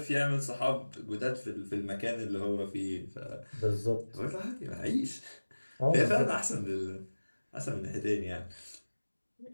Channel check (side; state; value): both; inverted; correlation -1.00